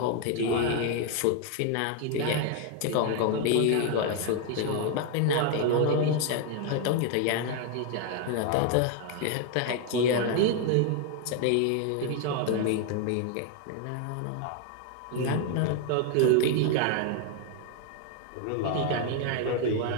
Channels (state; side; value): different; both; correlation 0.01